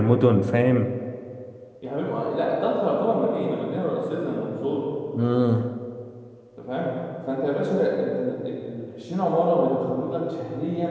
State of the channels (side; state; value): both; identical; correlation 1.00